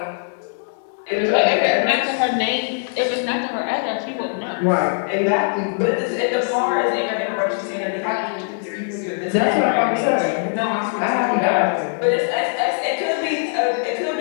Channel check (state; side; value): silent; right; digital silence